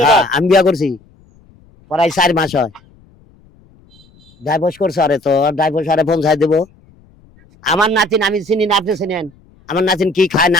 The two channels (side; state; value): left; noise; rumble, 29 dB below the sound